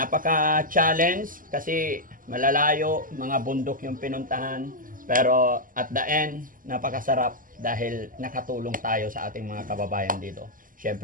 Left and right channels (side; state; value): left; late; 0.40 ms